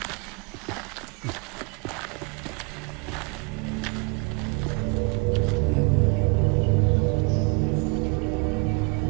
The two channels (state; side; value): quieter; left; 30.9 dB